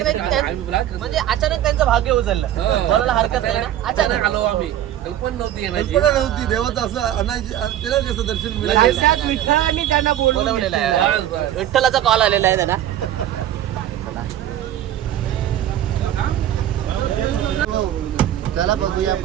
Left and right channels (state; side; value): quieter; left; 12.0 dB